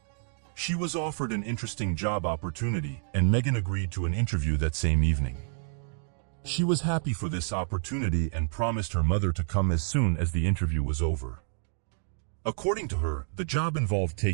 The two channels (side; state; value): left; silent; 59 dB below the other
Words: She was offered an interesting job opportunity, and Megan agreed to an interview that same evening. She was happy for this opportunity and promised her mother to come as soon as the interview was over. According to her, the job involved